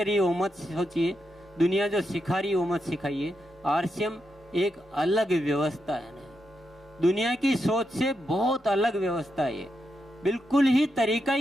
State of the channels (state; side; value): normal; both; correlation 0.84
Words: है वो मत सोचिए, दुनिया जो सिखा रही है वो मत सिखाइए। आरसीएम एक अलग व्यवस्था है ना, दुनिया की सोच से बहुत अलग व्यवस्था है, बिल्कुल ही तरीका